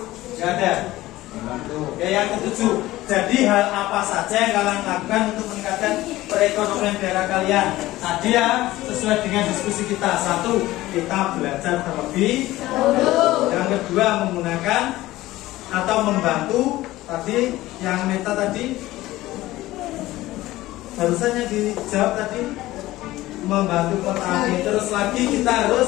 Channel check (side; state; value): right; quieter; 16.9 dB